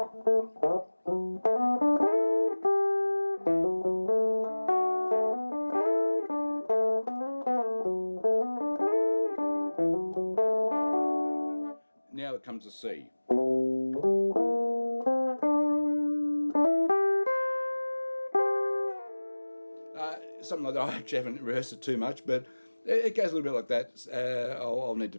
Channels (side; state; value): both; inverted; correlation -1.00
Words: Now it comes to C. Something like that. I actually haven't rehearsed it too much, but it goes a little bit like that. I'll need to